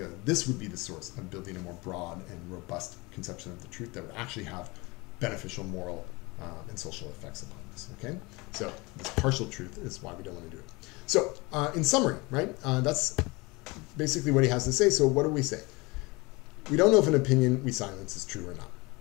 This would be the source of building a more broad and robust conception of the truth that would actually have beneficial moral and social effects upon us, okay? So this partial truth is why we don't want to do it. So in summary, right, that's basically what he has to say. So what do we say? We don't know if an opinion we silence is true or not.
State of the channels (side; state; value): right; quieter; 24.9 dB